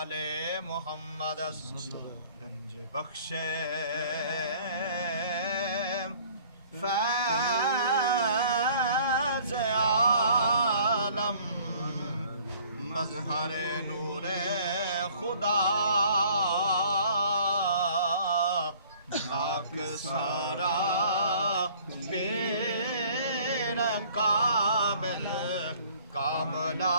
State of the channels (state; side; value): inverted; both; correlation -0.55